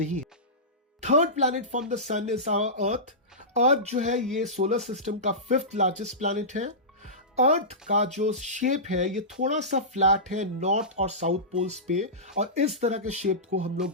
है। थर्ड प्लैनेट फ्रॉम द सन इज आवर अर्थ। अर्थ जो है ये सोलर सिस्टम का 5th लार्जेस्ट प्लैनेट है। अर्थ का जो शेप है ये थोड़ा सा फ्लैट है नॉर्थ और साउथ पोल्स पे, और इस तरह के शेप को हम लोग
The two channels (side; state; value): both; normal; correlation -0.18